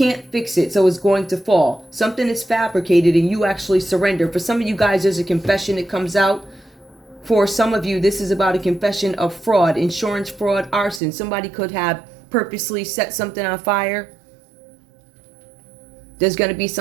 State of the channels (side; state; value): left; drops out; at 11.0 s